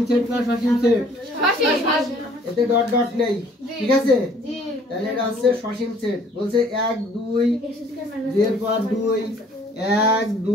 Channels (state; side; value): normal; both; correlation 0.57